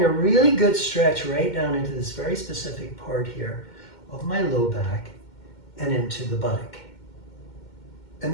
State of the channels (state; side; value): late; right; 2.2 ms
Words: a really good stretch right down into this very specific part here of my low back and into the buttock.